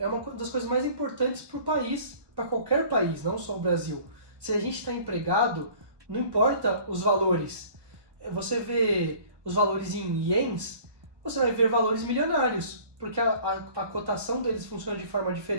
uma das coisas mais importantes para o país, para qualquer país, não só o Brasil. Se a gente está empregado, não importa os valores. Você vê os valores em ienes, você vai ver valores milionários, porque a cotação deles funciona de forma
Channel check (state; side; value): late; left; 1.2 ms